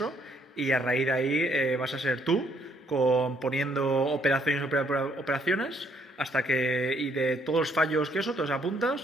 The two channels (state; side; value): normal; both; correlation 0.69